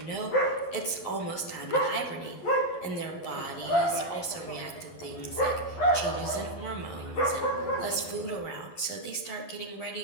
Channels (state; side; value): late; right; 11 ms